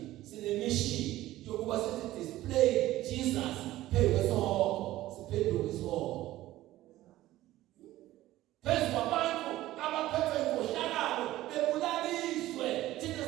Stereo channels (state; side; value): quieter; left; 15.6 dB